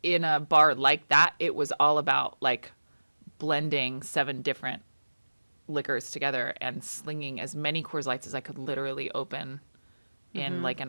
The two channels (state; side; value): inverted; both; correlation -1.00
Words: in a bar like that, it was all about like blending 7 different liquors together and slinging as many Coors Lights as I could literally open in like